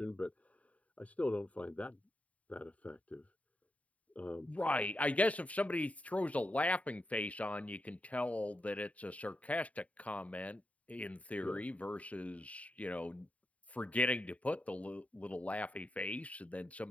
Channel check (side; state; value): right; late; 0.068 ms